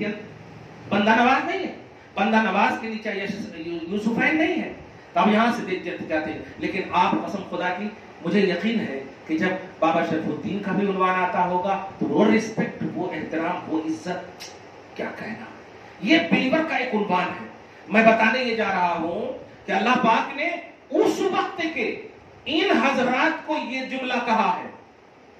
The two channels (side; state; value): both; identical; correlation 1.00